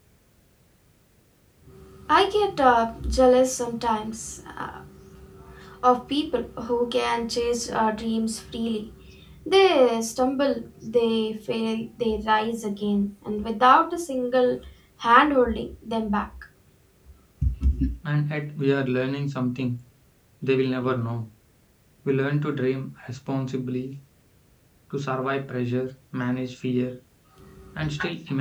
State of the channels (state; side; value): identical; both; correlation 1.00